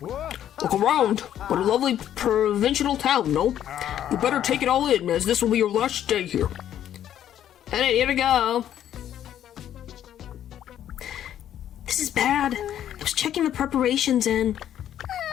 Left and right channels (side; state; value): right; quieter; 10.8 dB